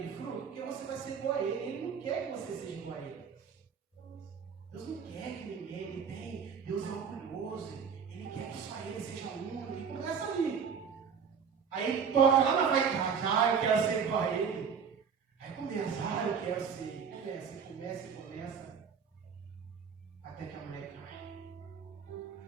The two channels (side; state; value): left; quieter; 6.6 dB